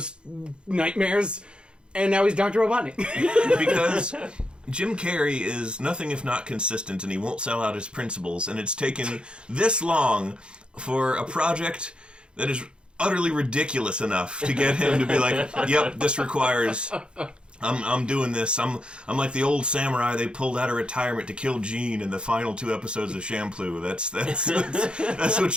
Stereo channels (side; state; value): left; late; 0.054 ms